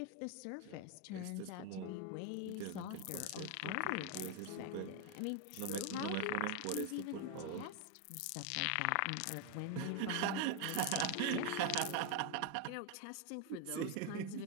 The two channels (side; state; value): both; different; correlation 0.01